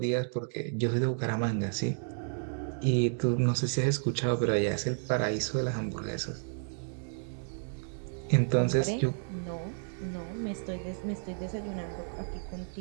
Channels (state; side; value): silent; left; 57 dB below the other